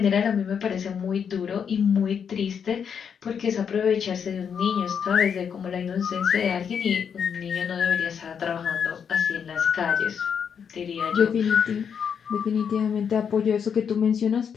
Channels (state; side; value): quieter; right; 7.2 dB